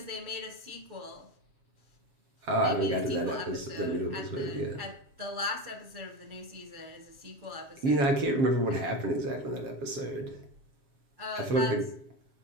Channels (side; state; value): left; late; 7.4 ms